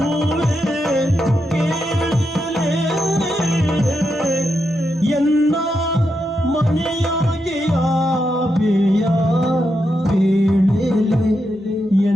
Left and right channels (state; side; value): normal; both; correlation 0.84